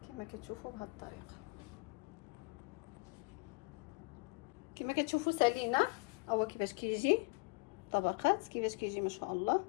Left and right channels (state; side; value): quieter; right; 29.1 dB